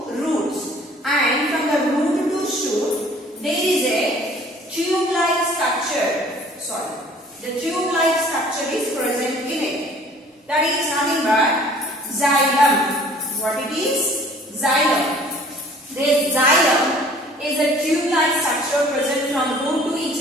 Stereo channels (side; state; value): both; normal; correlation 0.53